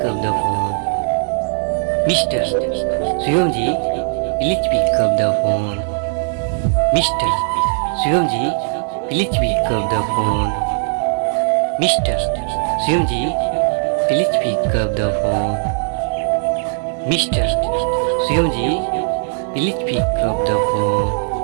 up the phone. Mr. Shivamji, please pick up the phone. Mr. Shivamji, please pick up the phone. Mr. Shivamji, please pick up the phone. Mr. Shivamji, please pick up the phone.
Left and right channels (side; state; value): left; silent; digital silence